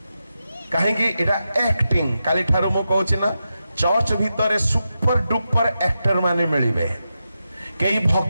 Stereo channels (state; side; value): inverted; both; correlation -0.89